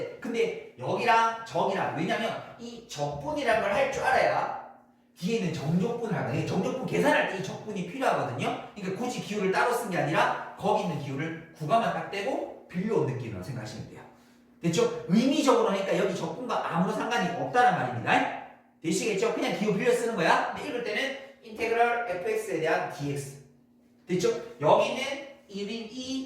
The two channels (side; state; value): both; identical; correlation 1.00